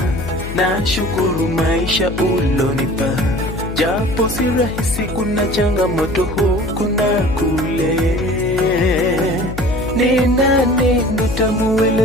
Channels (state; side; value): noise; left; hum, 9 dB below the sound